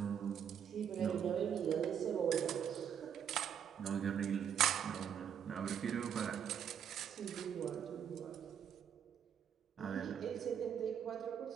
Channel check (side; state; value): left; quieter; 8.4 dB